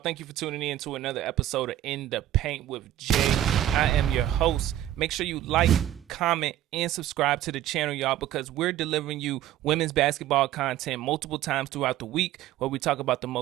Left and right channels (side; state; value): left; quieter; 12.8 dB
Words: you for tuning in to another episode of In the Paint with Jay. I am your host. Make sure you like, comment, and subscribe to the channel, y'all, because we're delivering you women's basketball content multiple times throughout the week where we talk about the